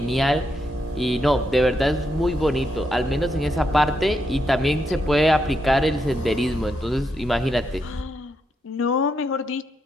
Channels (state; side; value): normal; both; correlation 0.81